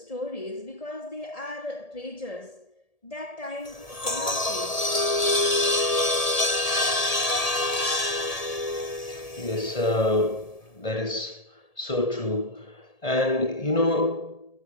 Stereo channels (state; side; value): late; right; 1.7 ms